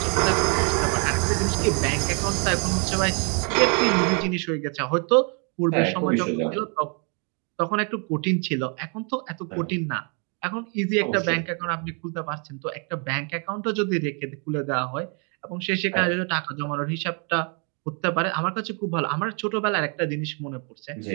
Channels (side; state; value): left; quieter; 37.1 dB